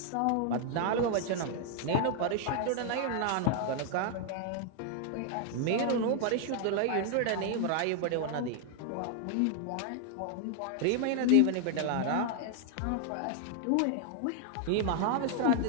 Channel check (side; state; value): both; different; correlation 0.00